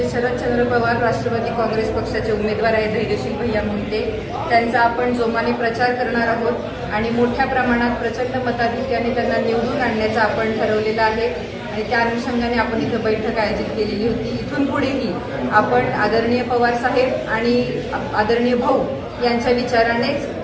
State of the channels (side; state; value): both; identical; correlation 1.00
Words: शरदचंद्र पवार राष्ट्रवादी काँग्रेस पक्षाचे उमेदवार आहेत धैर्यशील भैया मोहिते त्यांचा आपण जोमाने प्रचार करणार आहोत आणि मोठ्या प्रमाणात प्रचंड मताधिक्याने त्यांना निवडून आणण्याचं आपण ठरवलेलं आहे आणि त्या अनुषंगाने आपण इथं बैठक आयोजित केलेली होती। इथून पुढेही आपण आदरणीय पवार साहेब आणि आदरणीय भाऊ यांच्या